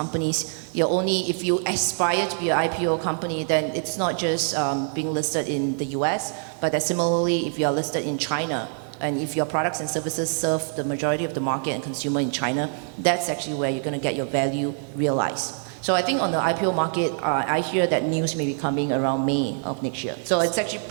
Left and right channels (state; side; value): silent; left; 62 dB below the other